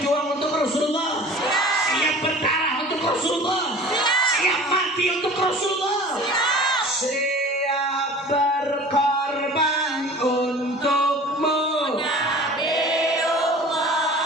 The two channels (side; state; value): both; normal; correlation 0.42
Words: untuk Rasulullah? Siap berdarah untuk Rasulullah? Siap mati untuk Rasulullah? Siap berkorban untukmu,